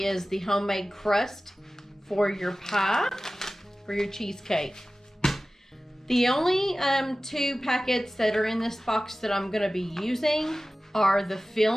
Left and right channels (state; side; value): normal; both; correlation 0.96